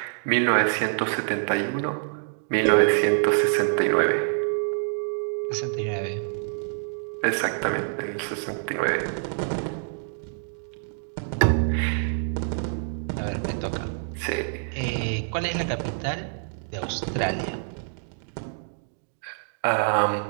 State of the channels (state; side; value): silent; left; digital silence